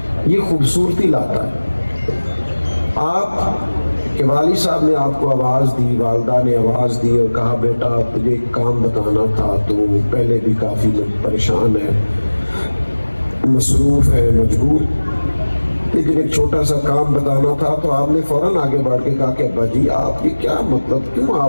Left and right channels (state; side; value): inverted; both; correlation -1.00